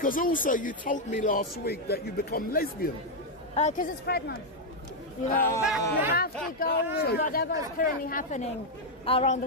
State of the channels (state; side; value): normal; both; correlation 0.00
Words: also you told me last week that you become lesbian. Because it's Pride Month. You have to go with whatever is currently happening around the